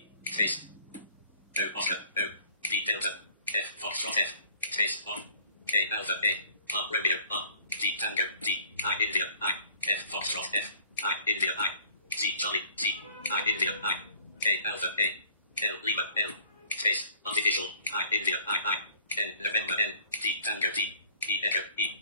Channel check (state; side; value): inverted; both; correlation -0.55